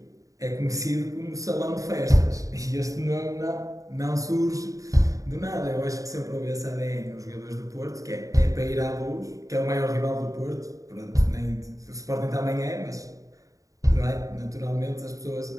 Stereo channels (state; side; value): late; left; 0.16 ms